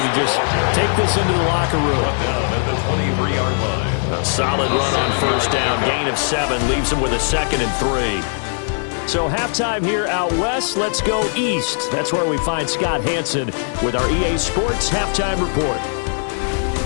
to just take this into the locker room. Down at the 23-yard line. A solid run on 1st down, gain of 7, leaves them with a 2nd and 3. So halftime here out west, let's go east. That's where we find Scott Hansen with our EA Sports Halftime Report.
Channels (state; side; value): silent; right; 66 dB below the other